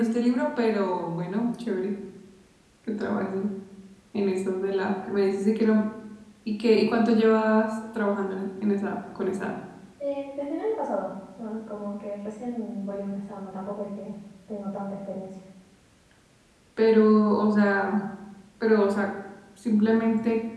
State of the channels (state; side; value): identical; both; correlation 1.00